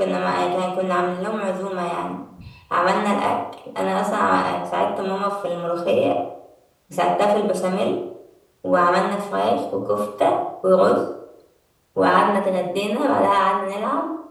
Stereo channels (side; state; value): both; identical; correlation 1.00